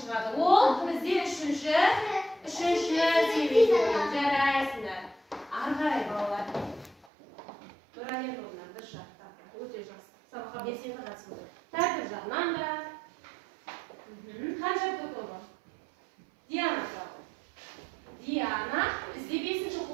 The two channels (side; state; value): left; drops out; at 7.1 s